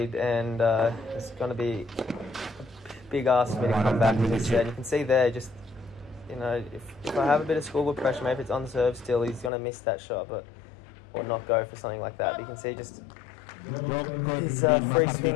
and it's going to be a big ask for me to come back instead. You can see there, just, you know, if I have a bit of scoreboard pressure, maybe it's on serve still, he's going to miss that shot, or not go for something like that. But you can see just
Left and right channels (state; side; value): drops out; right; at 9.5 s